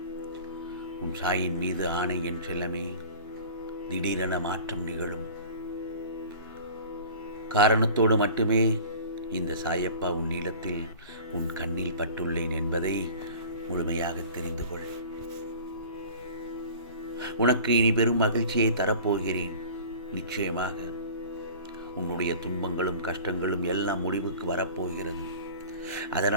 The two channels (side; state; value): both; inverted; correlation -0.41